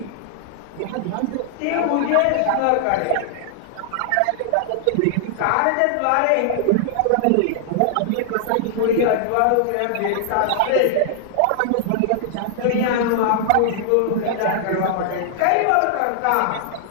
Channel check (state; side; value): different; both; correlation -0.01